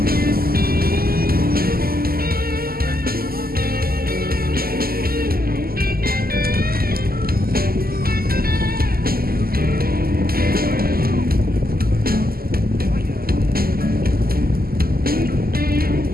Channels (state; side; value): late; left; 0.43 ms